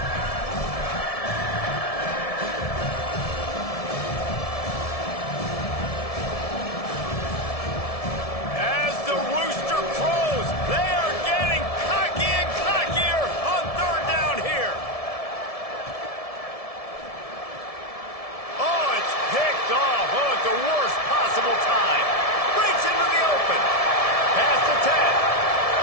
As the rooster crows, they are getting cocky and cockier on third down here. Oh, it's picked off. Oh, at the worst possible time. Breaks into the open. Pass the 10.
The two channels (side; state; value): right; late; 1.7 ms